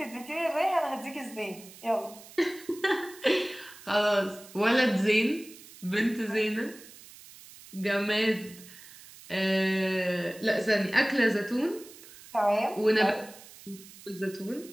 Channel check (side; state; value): right; noise; hiss, 19 dB below the sound